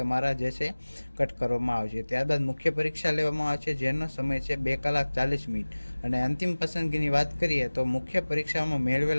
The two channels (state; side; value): inverted; both; correlation -1.00